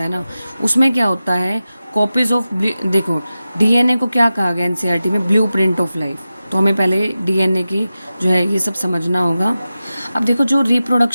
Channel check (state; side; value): inverted; both; correlation -0.94